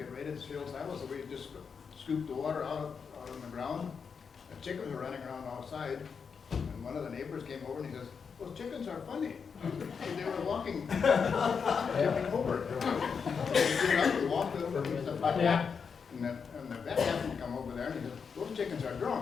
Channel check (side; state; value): right; quieter; 6.0 dB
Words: ready to fill silo, so we just scooped the water out on the ground. The chickens were running around outside, and one of the neighbors came over and he says, those chickens are funny. They were walking, jumping over. We walked over, and stuff like that. And the vet happened to come over there and he said, those chickens are